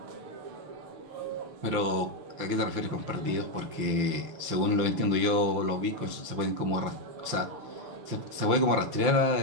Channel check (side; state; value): left; late; 5.8 ms